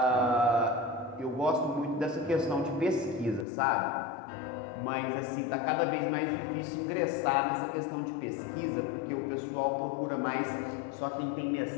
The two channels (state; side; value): drops out; right; at 3.5 s